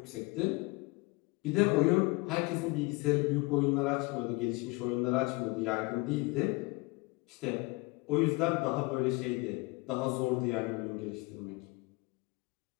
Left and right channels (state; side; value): quieter; right; 25.8 dB